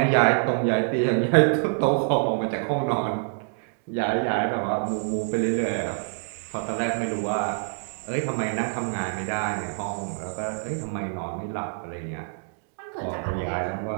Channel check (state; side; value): silent; left; digital silence